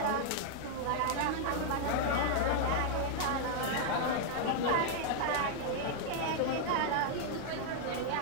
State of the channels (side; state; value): both; different; correlation -0.01